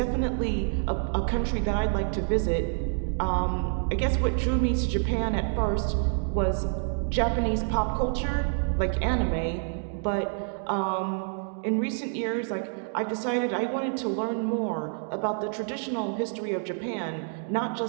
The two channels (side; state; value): left; silent; 60 dB below the other